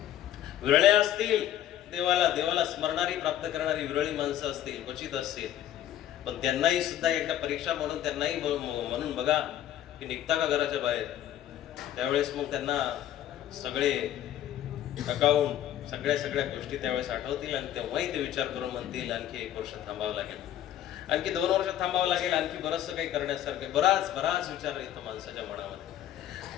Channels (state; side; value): quieter; right; 11.7 dB